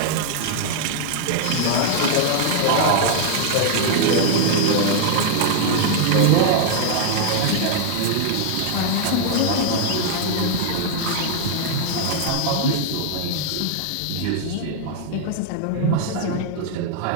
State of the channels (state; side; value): different; both; correlation 0.00